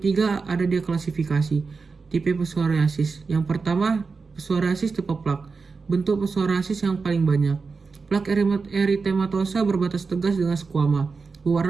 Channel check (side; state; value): left; quieter; 4.6 dB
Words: ada dia klasifikasi tipe psoriasis. Yang pertama, psoriasis tipe plak. Bentuk psoriasis yang paling banyak. Plak eritematosa berbatas tegas dengan squama.